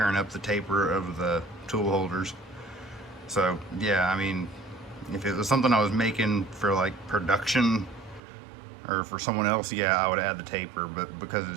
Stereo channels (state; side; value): drops out; left; at 8.2 s